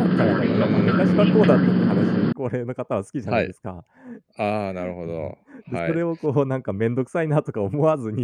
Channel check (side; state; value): both; identical; correlation 1.00